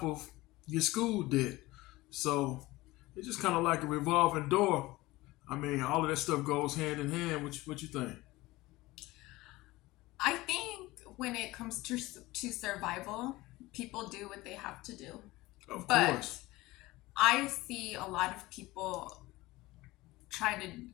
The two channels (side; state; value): right; quieter; 19.6 dB